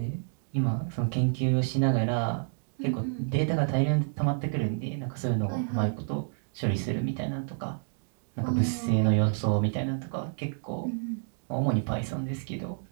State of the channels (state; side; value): silent; left; digital silence